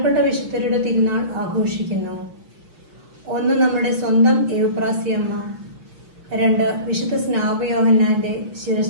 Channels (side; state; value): left; late; 6.1 ms